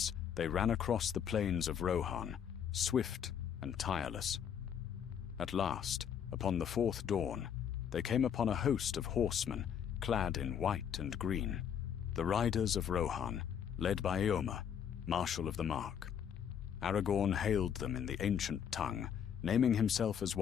they ran across the plains of Rohan, swift and tireless. At last, upon the 4th dawn, they came upon a host of horsemen clad in white and green, the riders of Rohan, led by Eomer, Marshal of the Mark. Aragorn hailed them in the ancient tongue, naming himself as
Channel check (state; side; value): quieter; right; 8.4 dB